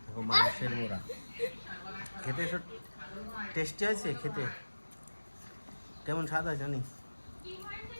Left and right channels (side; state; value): both; inverted; correlation -1.00